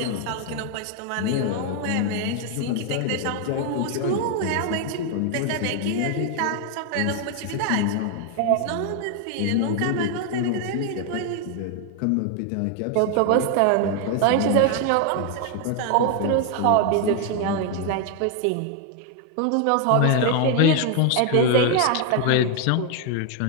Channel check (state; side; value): different; both; correlation 0.00